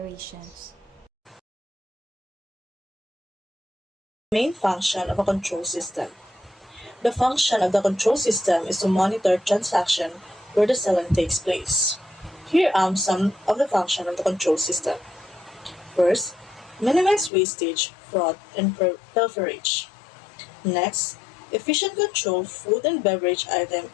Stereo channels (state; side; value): drops out; right; at 17.3 s